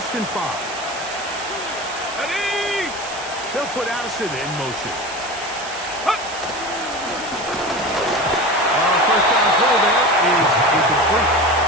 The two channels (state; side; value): noise; right; hiss, 13 dB below the sound